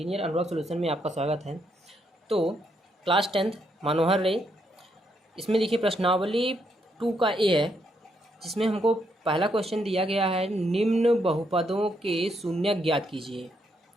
unlock solution में आपका स्वागत है। तो क्लास 10th मनोहर रे, इसमें देखिए प्रश्नावली 2 का ए है, जिसमें हमको पहला क्वेश्चन दिया गया है, निम्न बहुपदों के शून्यक ज्ञात कीजिए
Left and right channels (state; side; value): normal; both; correlation 0.76